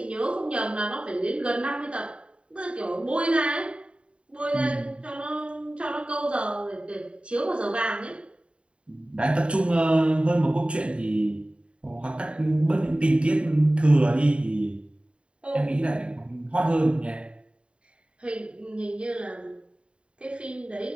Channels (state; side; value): late; left; 0.057 ms